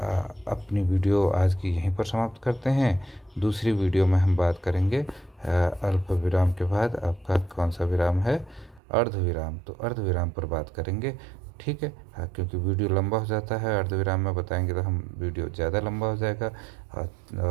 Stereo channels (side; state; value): left; drops out; at 8.8 s